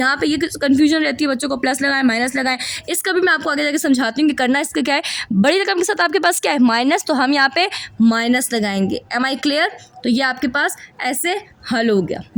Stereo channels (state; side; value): identical; both; correlation 1.00